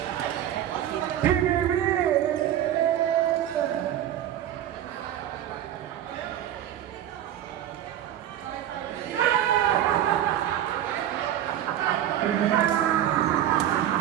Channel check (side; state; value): left; quieter; 11.3 dB